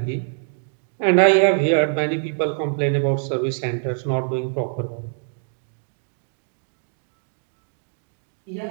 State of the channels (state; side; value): silent; left; digital silence